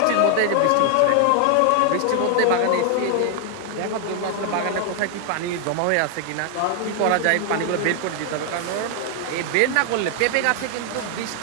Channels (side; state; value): both; different; correlation 0.00